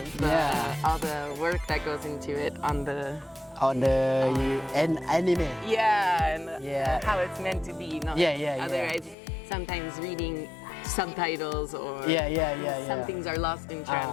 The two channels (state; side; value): drops out; right; at 9.2 s